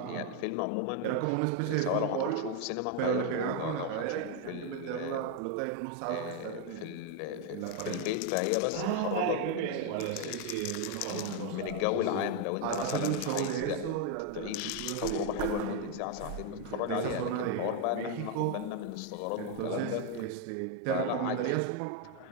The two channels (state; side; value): different; both; correlation 0.01